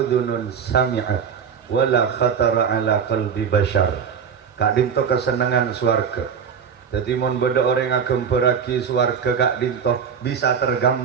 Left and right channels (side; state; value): left; quieter; 7.0 dB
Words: sami'at wala khatara ala qalbi bashar. Kak dinto kesenangan swarga. Jadi mun beda orang agem beragi swarga kak dinto bisa